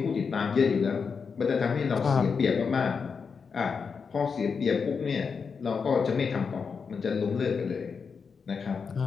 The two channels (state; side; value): quieter; right; 5.7 dB